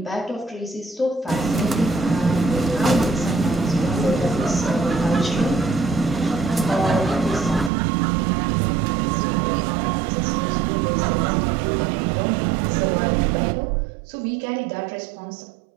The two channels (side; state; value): left; drops out; at 7.7 s